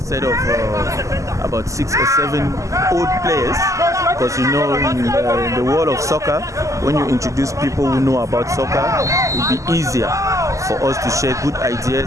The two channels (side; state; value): left; late; 0.16 ms